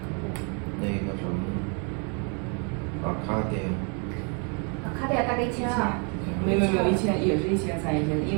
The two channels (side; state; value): left; quieter; 37.0 dB